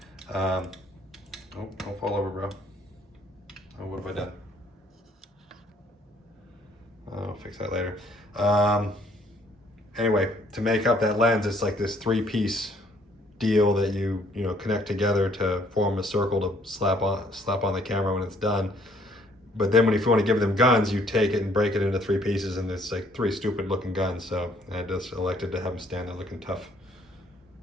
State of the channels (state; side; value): normal; both; correlation 0.63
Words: Oh, don't fall over, bro. Oh, what have I done? I'll fix that later. Anyway, to make up that lens, it's like this 3-piece deal that you connect together to form a circle to slap on the camera when it's done. But then if you want to give them guns, you take it and break it into 3 pieces, and it's like 3 stupid looking guns. So I just elected to have them stand there looking tough